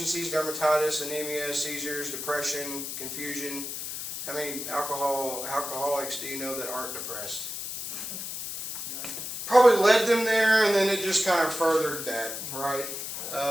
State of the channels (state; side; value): noise; left; hiss, 6 dB below the sound